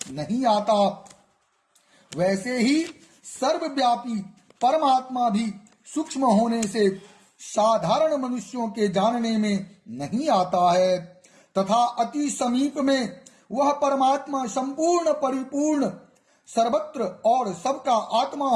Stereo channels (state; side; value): identical; both; correlation 1.00